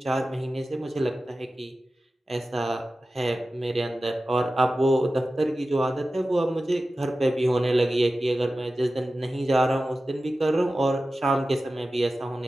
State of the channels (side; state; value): both; normal; correlation 0.94